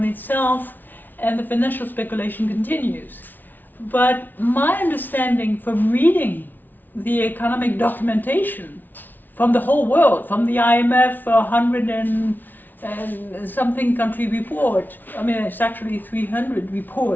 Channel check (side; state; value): right; late; 0.087 ms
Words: itself and the financial speculation continues. But my understanding from reading the economic documentation from the whole world, from the IMF 100 and something country report, I mean it's actually 300